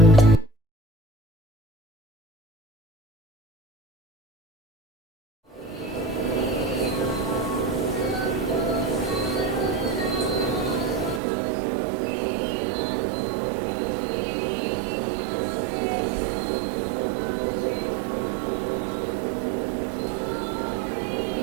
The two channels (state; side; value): drops out; left; at 11.2 s